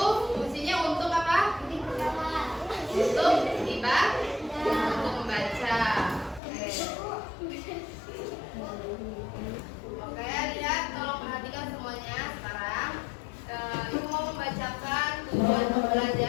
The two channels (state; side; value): drops out; right; at 6.4 s